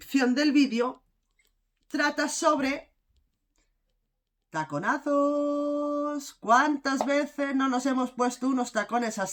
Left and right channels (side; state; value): both; identical; correlation 1.00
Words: del vídeo, trata sobre taconazos. ¿Cuántas veces no nos hemos puesto unos tacones